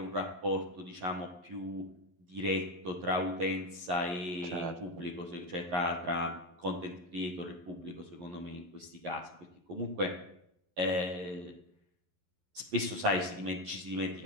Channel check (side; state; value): left; late; 11 ms